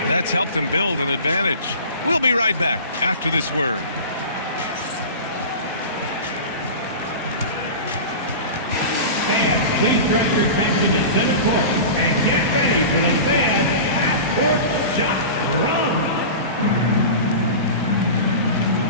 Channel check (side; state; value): both; inverted; correlation -0.32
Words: That's helped them build an advantage. We'll be right back after this word. Fans, please direct your attention to center court and get ready for the fan half-court shot run.